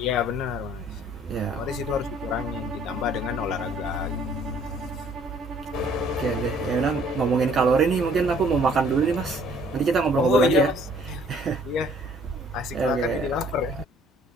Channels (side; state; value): both; normal; correlation 0.59